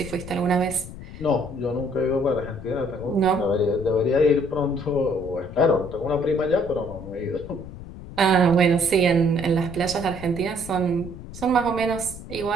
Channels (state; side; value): noise; left; rumble, 13 dB below the sound